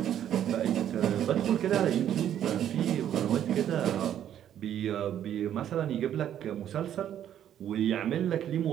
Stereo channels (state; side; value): quieter; left; 10.5 dB